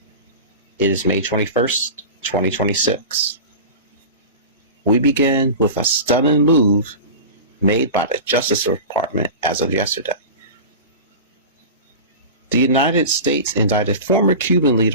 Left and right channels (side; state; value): both; inverted; correlation -0.30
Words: It is May 21st, 2026. We begin with a stunning move made by the Justice Department as of yesterday. The United States indicted former Cuban